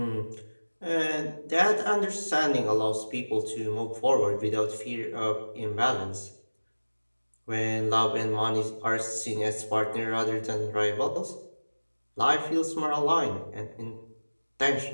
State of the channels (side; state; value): both; inverted; correlation -1.00